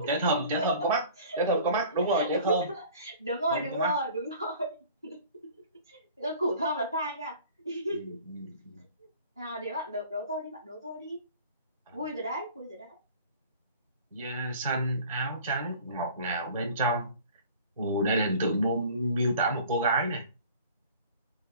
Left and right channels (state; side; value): inverted; both; correlation -0.46